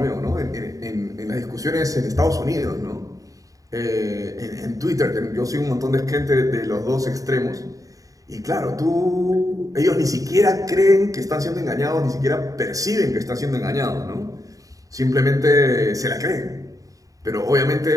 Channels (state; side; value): late; left; 0.17 ms